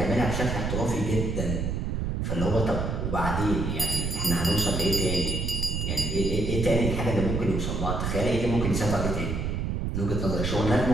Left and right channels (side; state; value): right; noise; rumble, 1 dB below the sound